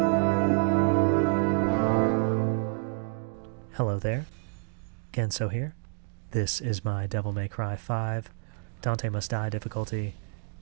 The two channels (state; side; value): quieter; left; 38.8 dB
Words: there, Genso here. This is my Devil May Cry 5 Dante Must Die difficulty